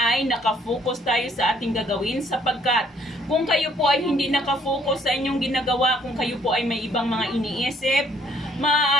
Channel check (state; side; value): normal; both; correlation 0.64